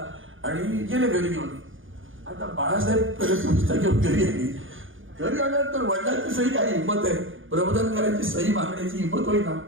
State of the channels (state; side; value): late; left; 0.58 ms